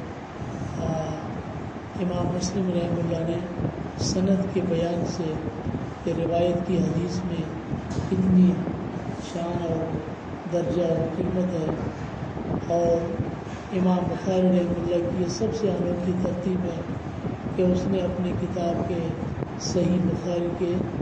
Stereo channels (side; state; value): both; identical; correlation 1.00